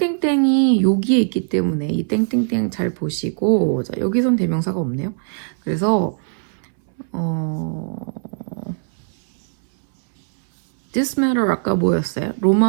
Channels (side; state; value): left; silent; 64 dB below the other